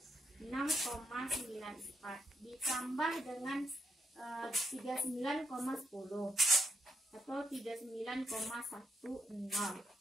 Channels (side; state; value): both; normal; correlation 0.80